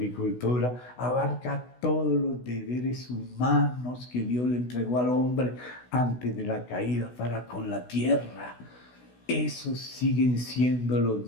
abarca todos los deberes humanos que Dios le entregó al hombre antes de la caída para con la tierra. Esos siguen siendo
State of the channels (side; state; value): right; late; 16 ms